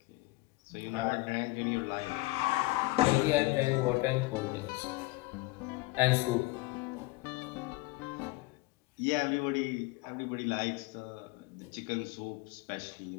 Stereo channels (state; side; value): quieter; right; 21.8 dB